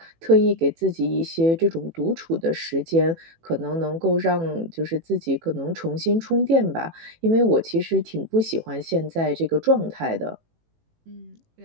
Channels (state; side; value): late; left; 18 ms